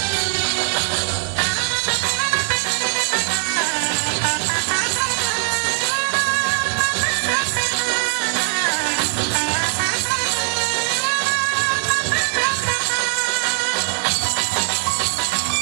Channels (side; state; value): left; silent; digital silence